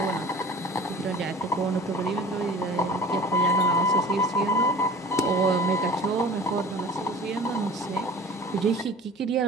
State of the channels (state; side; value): normal; both; correlation 0.43